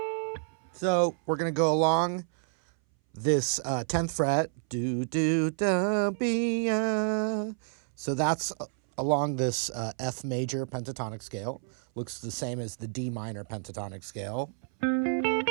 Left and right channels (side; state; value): left; silent; 58 dB below the other